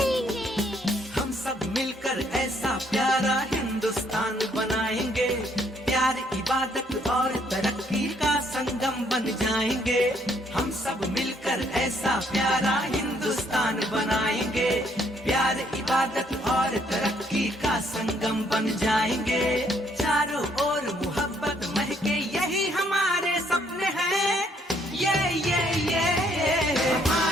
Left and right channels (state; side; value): normal; both; correlation 0.68